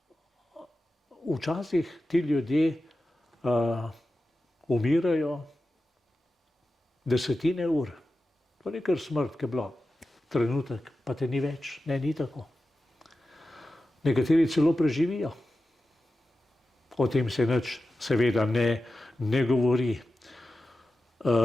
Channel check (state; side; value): normal; both; correlation 0.93